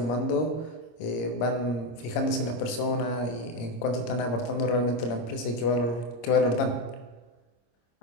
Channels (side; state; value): right; late; 25 ms